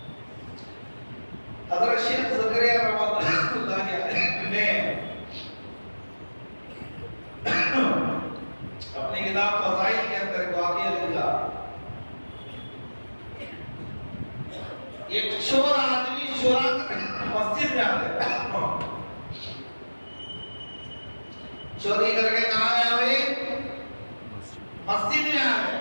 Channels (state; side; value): inverted; both; correlation -1.00